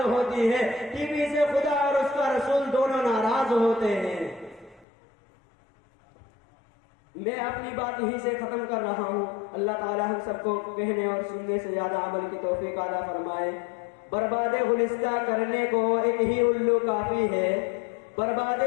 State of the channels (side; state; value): right; drops out; at 4.9 s